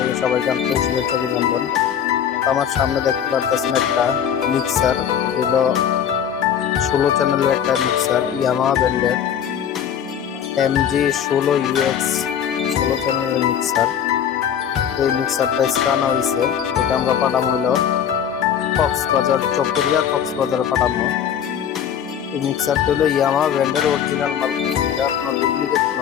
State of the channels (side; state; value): right; quieter; 8.8 dB